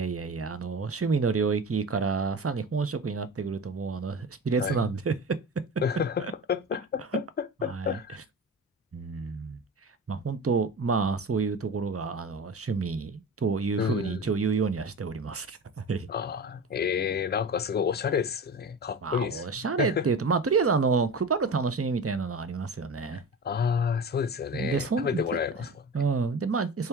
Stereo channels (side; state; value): both; normal; correlation 0.31